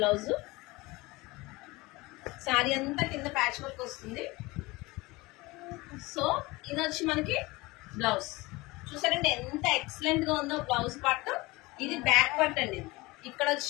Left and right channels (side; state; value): right; quieter; 22.2 dB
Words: బ్లౌజ్. సారీ అంతా కింద ప్యాచ్ వర్క్ వస్తుంది. సో ఇది వచ్చి మనకి బ్లౌజ్ చూసారంటే ఎంత ఎక్సలెంట్ గా ఉందో బ్లౌజ్ పార్ట్. ఇది బ్యాక్ పార్ట్ అండి. ఇక్కడ